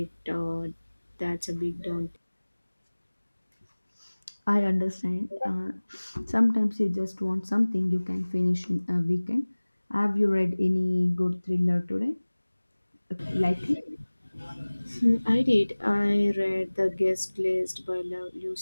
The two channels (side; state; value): both; inverted; correlation -1.00